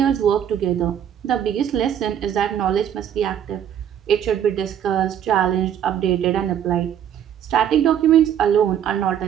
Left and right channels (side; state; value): left; quieter; 9.5 dB